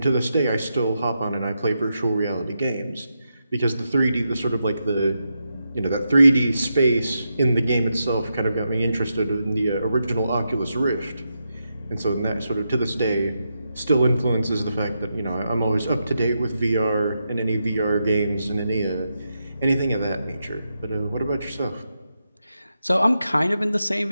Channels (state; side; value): inverted; both; correlation -0.86